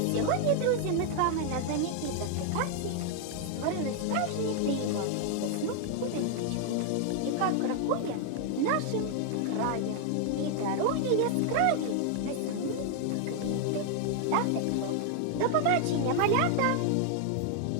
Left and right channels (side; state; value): both; different; correlation 0.00